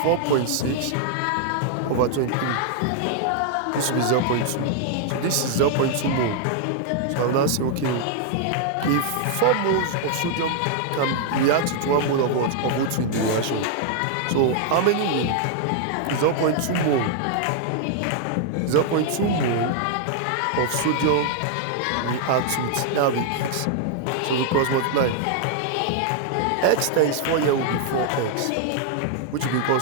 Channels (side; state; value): both; different; correlation 0.00